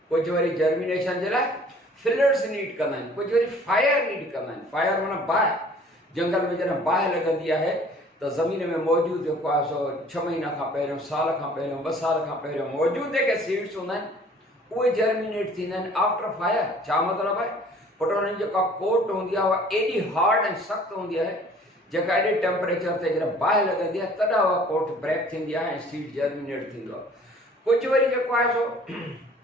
कुझु वरी जर्मिनेशन जे लाइ फिलर्स नीड कंदा आहिनि, कुझु वरी फायर नीड कंदा आहिनि। फायर माना बाहि, जंगल में जॾहिं बाहि लॻंदी आहे त ज़मीन में मौजूदु जेको आहे सो 6 महीना खां पहिरियों, साल खां पहिरियों, 2 साल खां पहिरियों मौजूदु जेके सीड्स हूंदा आहिनि उहे जर्मिनेट थींदा आहिनि आफ्टर फायर। छा मतिलबु आहे? पुट हुनजी जेका कोट हूंदी आहे उहा एॾी हार्ड ऐं सख़्तु हूंदी आहे, जेका एॾे टेम्परेचर ते जॾहिं बाहि लॻंदी आहे तॾहिं उहा कोट ब्रेक थींदी आहे ऐं सीड जर्मिनेट थींदो आहे। कुझु वरी जेको आहे सो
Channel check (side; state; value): both; normal; correlation 0.52